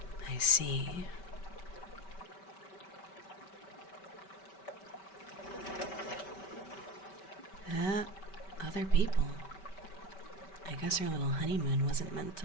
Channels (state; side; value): late; right; 5.2 ms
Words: I see. Other people. I guess our little honeymoon wasn't meant to